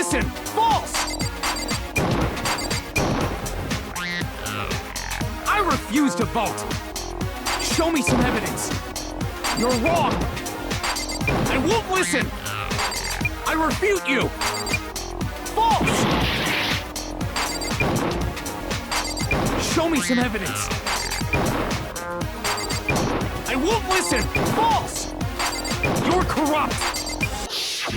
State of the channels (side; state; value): both; identical; correlation 1.00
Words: False! I refuse to vote! Show me some evidence! You're wrong! I won't listen! I refute you! False! Show me some evidence! I won't listen! False! You're corrupt!